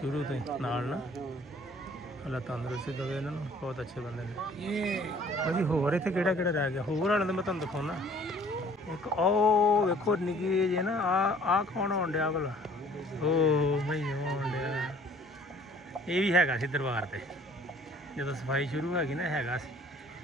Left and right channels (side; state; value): both; normal; correlation 0.55